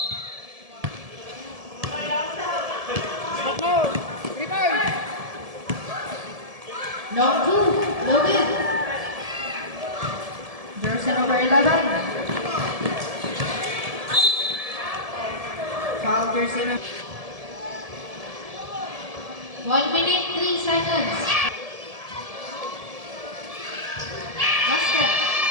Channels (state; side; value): late; left; 1.7 ms